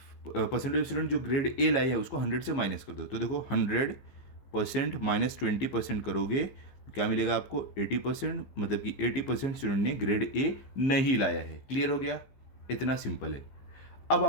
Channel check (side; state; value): right; late; 15 ms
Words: परसेंटेज स्टूडेंट जो ग्रेड ए लाए हैं उसको 100 से माइनस कर दो। तो देखो 100% माइनस 20% करोगे क्या मिलेगा आपको 80%, मतलब कि 80% स्टूडेंट ने ग्रेड ए नहीं लाया है। क्लियर हो गया, इतना सिंपल है। अब